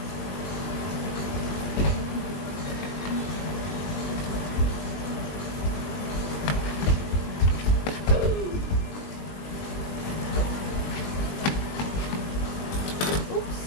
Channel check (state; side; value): late; right; 20 ms